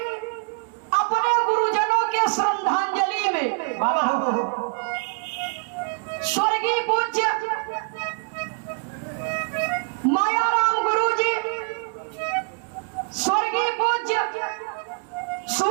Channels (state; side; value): quieter; left; 35.6 dB